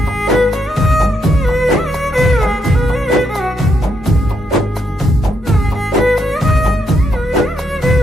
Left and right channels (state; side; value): normal; both; correlation 0.78